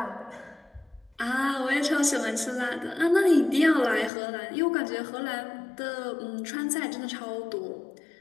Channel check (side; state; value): right; drops out; at 4.1 s